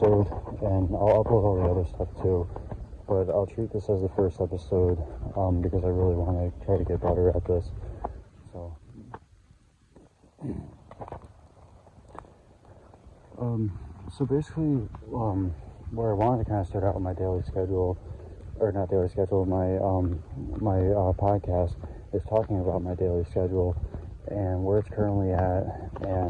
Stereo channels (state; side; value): identical; both; correlation 1.00